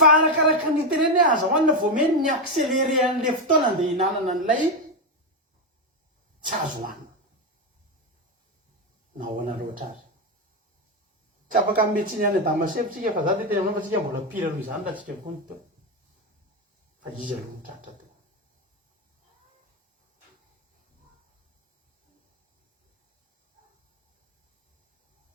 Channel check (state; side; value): normal; both; correlation 0.09